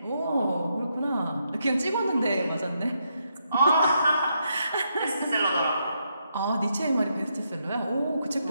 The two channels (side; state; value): both; inverted; correlation -0.79